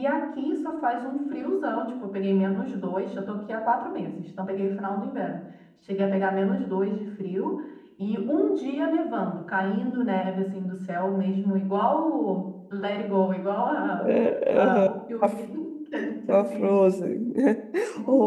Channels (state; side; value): identical; both; correlation 1.00